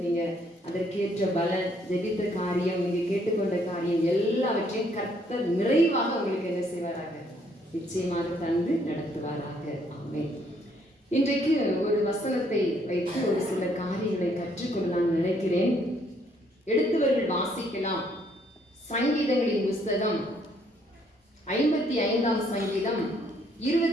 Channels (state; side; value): normal; both; correlation 0.68